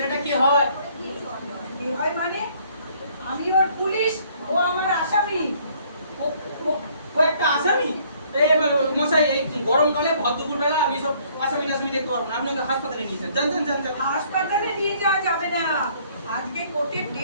কি হয়? কি হয় মানে? আমি ওর পুলিশ, ও আমার আসামি। ও একটা আসামি? মশাই, এই গরমকালে ভর বেলা আমি সব আসামি টাসামি দেখতে পারবো না। আপনি ওকে হাসপাতালে নিয়ে যান। যান। হাসপাতালে নিয়ে যাওয়া যাবে না, আজকে কোর্টের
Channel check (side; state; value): both; inverted; correlation -0.62